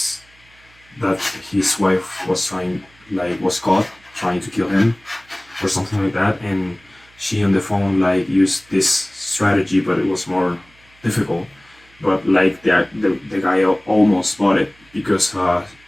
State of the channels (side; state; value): right; noise; hum, 30 dB below the sound